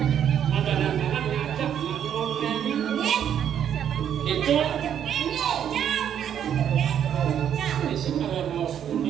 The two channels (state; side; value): quieter; left; 9.3 dB